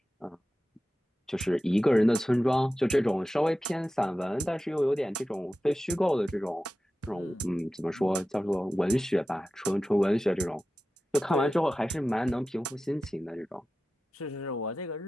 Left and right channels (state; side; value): normal; both; correlation 0.94